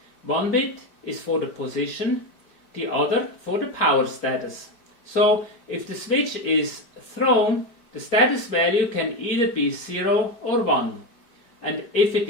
One bit is for the position, the other for the power status. So if the switch is thrown, the status value can either be 0 or 1, and if it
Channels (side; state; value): right; late; 4.5 ms